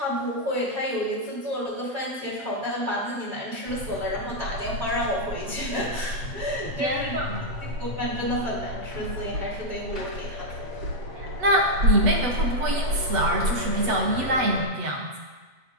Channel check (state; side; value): late; left; 8.0 ms